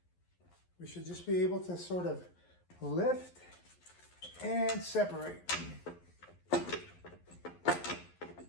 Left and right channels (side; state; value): right; late; 11 ms